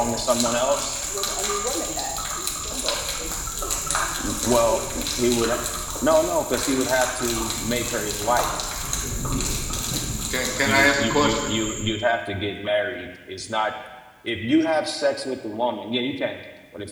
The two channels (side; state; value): both; identical; correlation 1.00